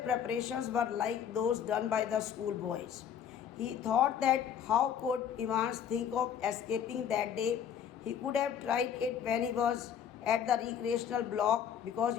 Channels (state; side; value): quieter; right; 8.6 dB